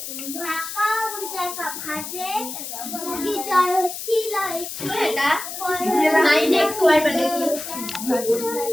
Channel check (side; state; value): left; noise; hiss, 8 dB below the sound